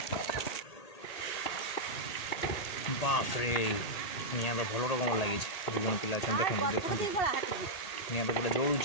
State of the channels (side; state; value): right; late; 1.8 ms